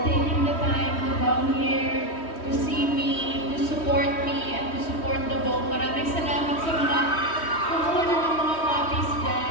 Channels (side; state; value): right; late; 3.1 ms